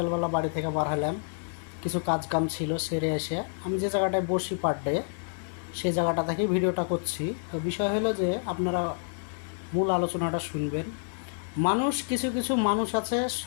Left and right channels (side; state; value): right; silent; digital silence